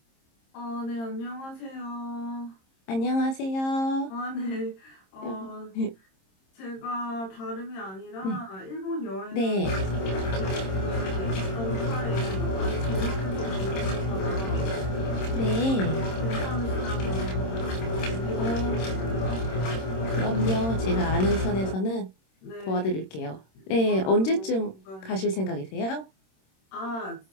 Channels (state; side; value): late; right; 26 ms